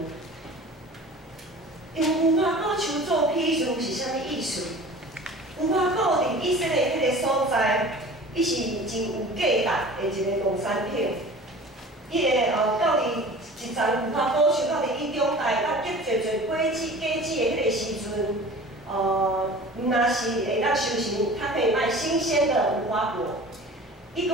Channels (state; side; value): normal; both; correlation 0.41